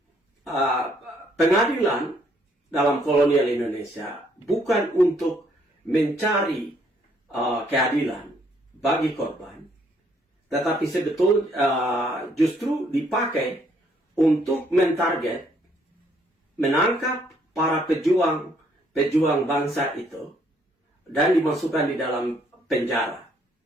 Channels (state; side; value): normal; both; correlation 0.67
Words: pengadilan dalam kolonial Indonesia bukan untuk mencari keadilan bagi korban, tetapi sebetulnya justru dipakai untuk mentarget, menangkap para pejuang bangsa itu dan dimasukkan di dalam penjara.